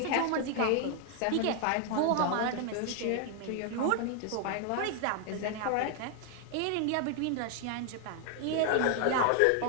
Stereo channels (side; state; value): both; different; correlation 0.00